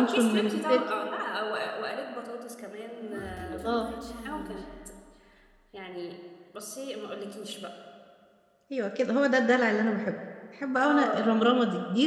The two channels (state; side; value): identical; both; correlation 1.00